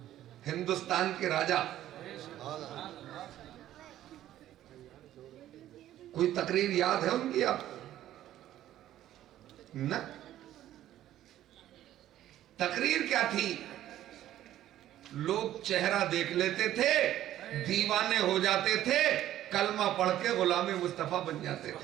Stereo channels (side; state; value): left; quieter; 12.9 dB